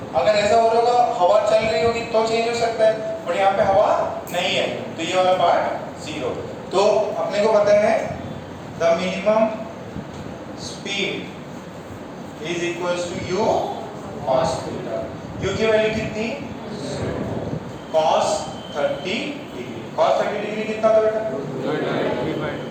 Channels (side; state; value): both; identical; correlation 1.00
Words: अगर ऐसा हो रहा होगा, हवा चल रही होगी तो चेंज हो सकता है, बट यहाँ पे हवा नहीं है, तो ये वाला पार्ट जीरो. तो अपने को पता है the minimum speed is equals to u cos theta. U की वैल्यू कितनी cos 30 डिग्री। cos 30 डिग्री कितना था बेटा